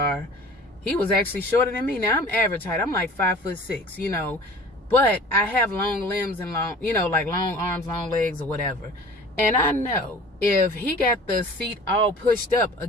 he was actually shorter than me. Now I'm average height, I'm like 5'6", you know, but I have long limbs and long, you know, like long arms, long legs or whatever. And I know if he got the seat all pushed up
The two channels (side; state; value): both; normal; correlation 0.44